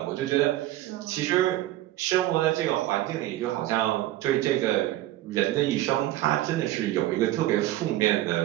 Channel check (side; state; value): left; quieter; 15.0 dB